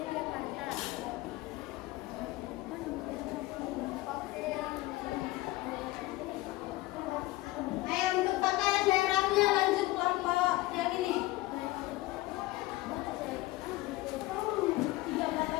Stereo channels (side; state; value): right; quieter; 18.7 dB